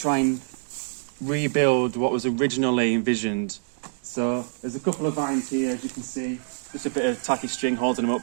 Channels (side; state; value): left; silent; digital silence